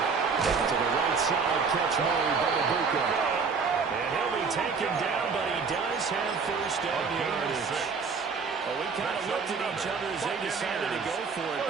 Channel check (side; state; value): left; quieter; 5.2 dB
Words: To the right side, catch made by Ibuka. And he'll be taken down, but he does have first down yardage. Well, we kind of looked at each other as they decided to go for it,